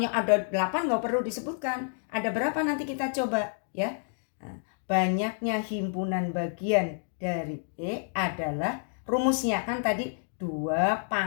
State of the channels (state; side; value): silent; right; digital silence